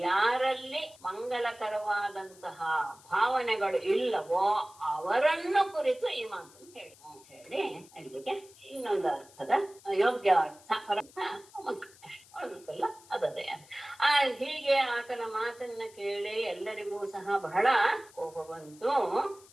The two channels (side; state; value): left; noise; hiss, 24 dB below the sound